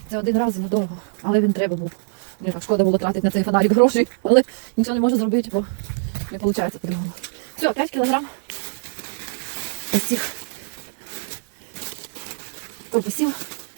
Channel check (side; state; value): left; silent; 63 dB below the other